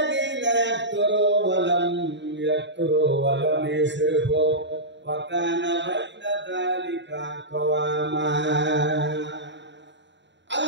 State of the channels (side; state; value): left; late; 0.52 ms